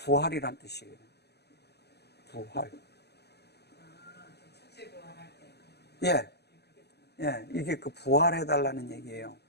뜻이에요. 부활. 첫째 부활할 때. 예, 이게 그 부활해달라는 얘기예요.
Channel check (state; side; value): late; right; 0.48 ms